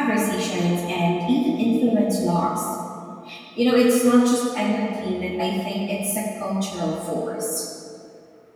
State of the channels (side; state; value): both; identical; correlation 1.00